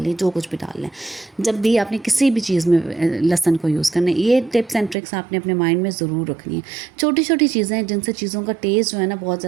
है, जो कुछ भी डालना है। जब भी आपने किसी भी चीज़ में लहसुन को यूज़ करना है, ये टिप्स एंड ट्रिक्स आपने अपने माइंड में ज़रूर रखनी है। छोटी छोटी चीज़ें हैं जिनसे चीज़ों का टेस्ट जो है ना बहुत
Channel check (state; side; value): drops out; left; at 5.0 s